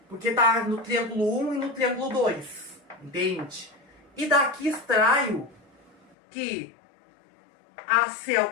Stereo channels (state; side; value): drops out; right; at 6.2 s